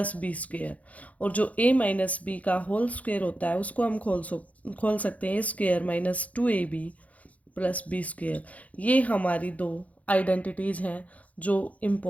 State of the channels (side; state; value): right; late; 0.069 ms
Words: b², और जो a माइनस बी का होल स्क्वायर होता है उसको हम खोल सकते हैं a² minus 2ab plus b²। ये हमारी 2 आइडेंटिटीज़ हैं जो